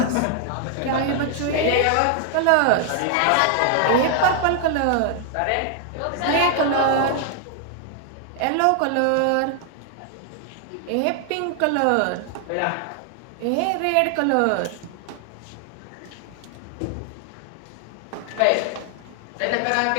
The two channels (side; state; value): both; different; correlation 0.00